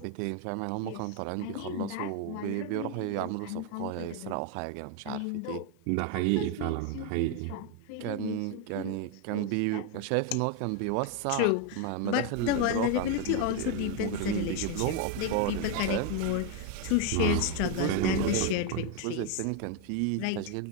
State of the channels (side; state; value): both; different; correlation 0.01